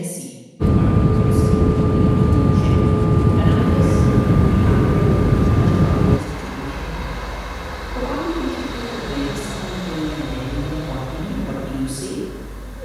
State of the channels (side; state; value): both; identical; correlation 1.00